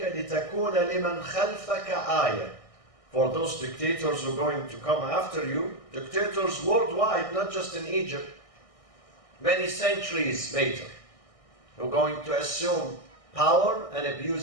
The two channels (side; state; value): right; late; 1.6 ms